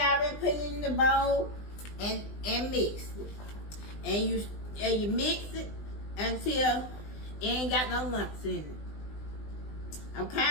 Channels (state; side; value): late; right; 20 ms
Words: put it in the bowl and mix it. And you mix it until it ain't got no lumps in it.